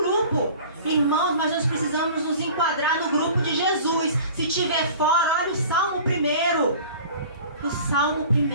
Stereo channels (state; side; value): inverted; both; correlation -0.43